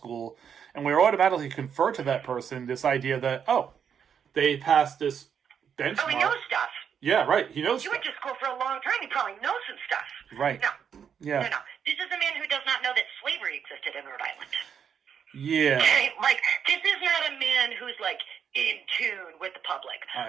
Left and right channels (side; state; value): left; quieter; 7.7 dB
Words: and we automatically confer to that person this idea that, they passed this benchmark. Oh, he knows stuff. Yeah, right. He knows. He went to school for a long time. He probably knows some stuff. Right. No. Yeah. No. This is a man who does not know that slavery existed in Rhode Island. Yeah. Okay? Like, this is not a man who's, like, in tune with the public. I